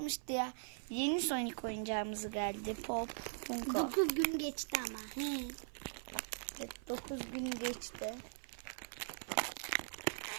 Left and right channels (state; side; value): silent; left; 51 dB below the other